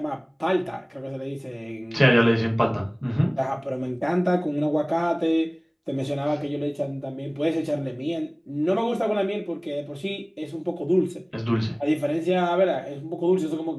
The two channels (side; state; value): both; identical; correlation 1.00